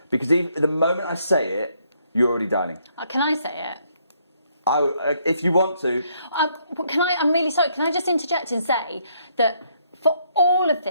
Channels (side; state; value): both; inverted; correlation -0.71